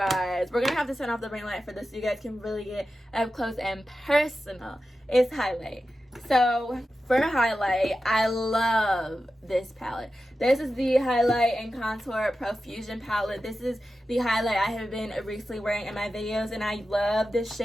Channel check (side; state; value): both; normal; correlation 0.92